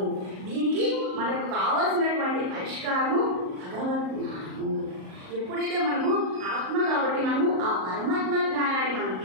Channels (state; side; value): late; left; 38 ms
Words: దీనికి మనకు కావాల్సినటువంటి పరిష్కారము భగవద్ జ్ఞానము। ఎప్పుడైతే మనము ఆత్మ కాబట్టి మనము ఆ పరమాత్మ జ్ఞానాన్ని మనం